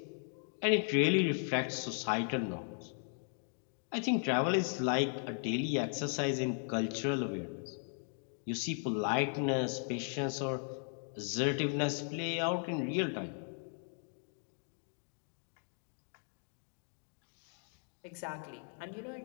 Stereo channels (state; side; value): silent; right; 53 dB below the other